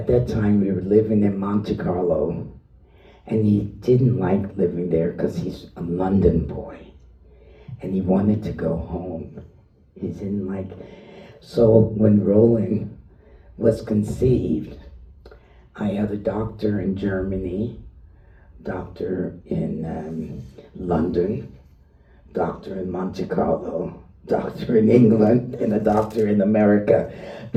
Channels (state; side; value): identical; both; correlation 1.00